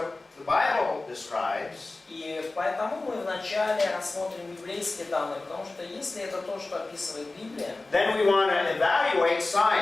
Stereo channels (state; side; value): quieter; right; 3.2 dB